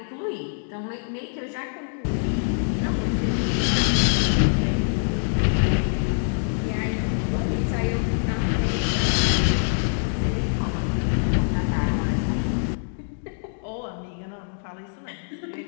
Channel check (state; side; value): silent; right; digital silence